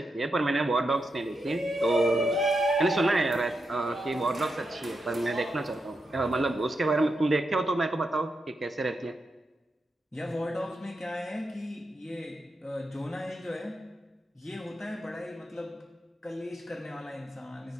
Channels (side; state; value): both; normal; correlation 0.85